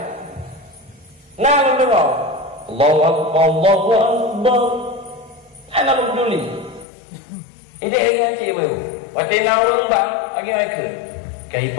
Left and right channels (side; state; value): right; drops out; at 6.9 s